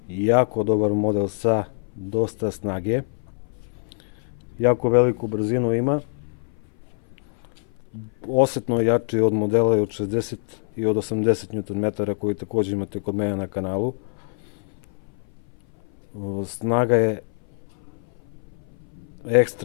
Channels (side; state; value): right; silent; 59 dB below the other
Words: jako dobar model sa dosta snage. Jako veliku brzinu ima. Osetno jači od modela od 60 i od 80 Nm koji također imate kod mene na kanalu. Snaga je